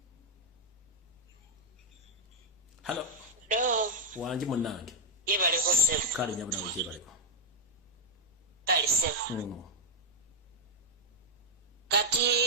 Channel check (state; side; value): normal; both; correlation 0.02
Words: Hello. Wanji munange. Yebaleko sebo. Kale nyabuna yebaleko. Kale sebo.